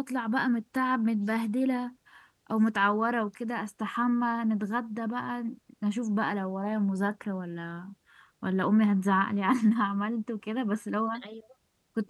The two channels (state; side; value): identical; both; correlation 1.00